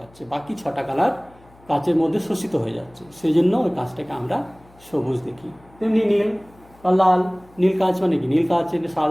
বাকি 6টা কালার কাচের মধ্যে শোষিত হয়ে যাচ্ছে, সেই জন্য ওই কাঁচটাকে আমরা সবুজ দেখি। তেমনি নীল বা লাল, নীল কাঁচ মানে কি, নীল কাঁচের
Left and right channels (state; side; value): noise; left; hum, 27 dB below the sound